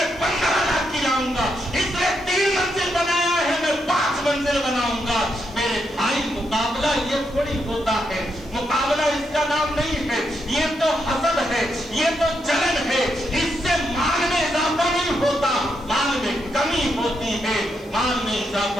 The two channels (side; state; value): right; noise; hiss, 28 dB below the sound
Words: 15 لاکھ کی لاؤں گا، اس نے 3 منزل بنایا ہے میں 5 منزل بناؤں گا۔ میرے بھائی مقابلہ یہ تھوڑی ہوتا ہے، مقابلہ اس کا نام نہیں ہے، یہ تو حسد ہے، یہ تو جلن ہے، اس سے مال میں اضافہ نہیں ہوتا، مال میں کمی ہوتی ہے۔ مال میں